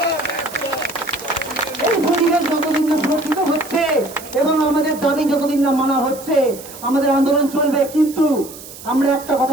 এই পরিবেশ যতদিন না সুরক্ষিত হচ্ছে এবং আমাদের দাবি যতদিন না মানা হচ্ছে, আমাদের আন্দোলন চলবে। কিন্তু আমরা একটা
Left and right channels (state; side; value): noise; right; hiss, 16 dB below the sound